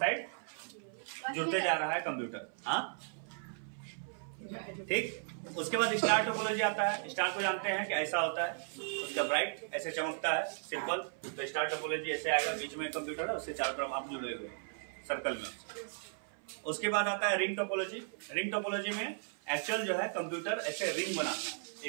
जुड़ते जा रहा है कंप्यूटर, हाँ, ठीक। उसके बाद स्टार टोपोलॉजी आता है। स्टार को जानते हैं कि ऐसा होता है, उसका ब्राइट ऐसे चमकता है, सिंपल। तो स्टार टोपोलॉजी ऐसे आएगा, बीच में कंप्यूटर है, उससे चारों तरफ आप जुड़े हुए सर्कल में। उसके बाद आता है रिंग टोपोलॉजी। रिंग टोपोलॉजी में एक्चुअल जो है कंप्यूटर ऐसे रिंग बनाता है,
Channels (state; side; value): silent; left; 54 dB below the other